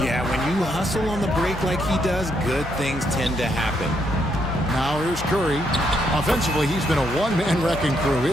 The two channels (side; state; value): both; normal; correlation 0.76